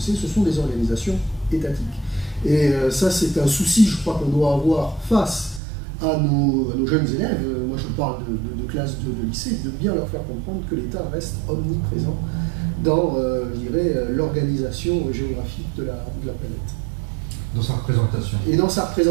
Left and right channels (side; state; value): left; drops out; at 5.6 s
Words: ce sont des organisations étatiques. Et ça, c'est un souci, je crois, qu'on doit avoir face à nos jeunes élèves. Moi, je parle de classes de lycée, de bien leur faire comprendre que l'État reste omniprésent dans, je dirais, l'organisation géographique de la planète. Dans sa représentation. Et dans sa